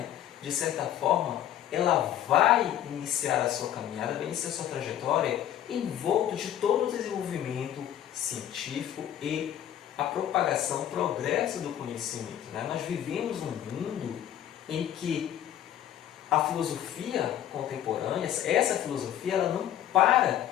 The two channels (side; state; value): right; quieter; 11.3 dB